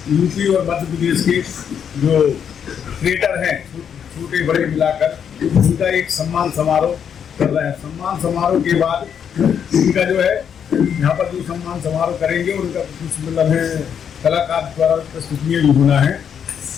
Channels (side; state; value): right; quieter; 8.0 dB